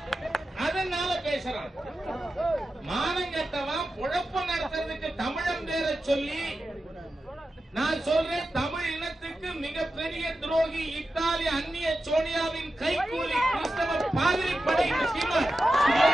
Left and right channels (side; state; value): both; normal; correlation 0.92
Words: அதனால பேசுறான். மானங்கட்டவன் பொழப்பு நடத்துறதுக்கு தமிழன் பேரை சொல்லி நான் சொல்றேன். தமிழ் இனத்துக்கு மிகப்பெரிய துரோகி இத்தாலி அந்நிய சோனியாவின் கைகூலி கிறிஸ்தவ பாதிரி படை சீமான்.